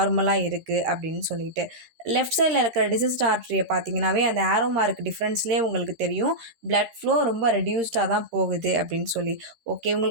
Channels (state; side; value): late; left; 13 ms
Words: இருக்குது அப்படின்னு சொல்லிட்டு. லெஃப்ட் சைடில் இருக்கிற டிசீஸ்ட் ஆர்ட்ரியை பார்த்தீங்கன்னாவே அந்த ஆரோ மார்க் டிஃப்ரென்ஸ்லேயே உங்களுக்கு தெரியும் பிளட் ஃப்ளோ ரொம்ப ரெடியூஸ்டாக தான் போகுது அப்படின்னு சொல்லி. ஓகே,